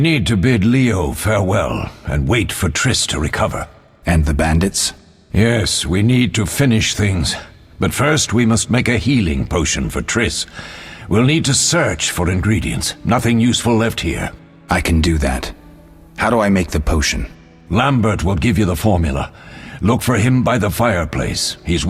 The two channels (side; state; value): both; identical; correlation 1.00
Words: to bid Leo farewell and wait for Triss to recover. And the bandits? Yes, we need to finish things. But first we must make a healing potion for Triss. We'll need to search for ingredients. Nothing useful left here. I can do that. How do I make the potion? Lambert will give you the formula. Look for him by the fireplace. He's